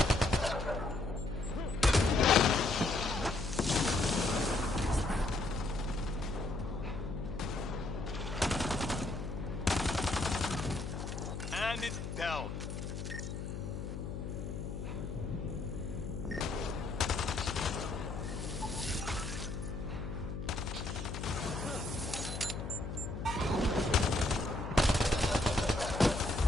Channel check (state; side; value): noise; left; hum, 6 dB below the sound